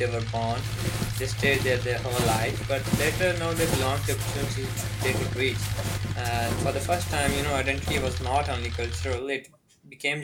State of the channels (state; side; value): identical; both; correlation 1.00